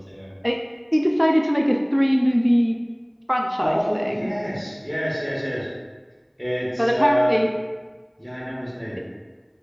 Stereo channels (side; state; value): both; identical; correlation 1.00